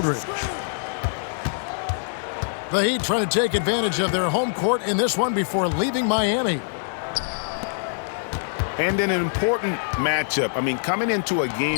The Heat trying to take advantage of their home court in this one before leaving Miami. And in an important matchup, I mean, coming into a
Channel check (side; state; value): right; silent; digital silence